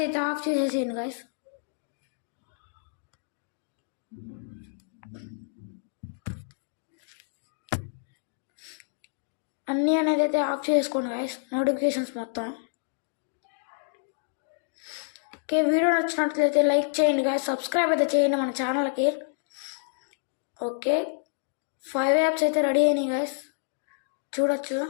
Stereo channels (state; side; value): silent; right; digital silence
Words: అయితే ఆఫ్ చేసేసేయండి గాయస్. అన్నీ అనేది అయితే ఆఫ్ చేసుకోండి గాయస్, నోటిఫికేషన్స్ మొత్తం. ఓకే, వీడియో నచ్చినట్లయితే లైక్ చేయండి గాయస్, సబ్స్క్రైబ్ అయితే చేయండి మన ఛానల్కి. ఓకే, 5 యాప్స్ అయితే రెడీ అయినాయి గాయస్, చూడొచ్చు.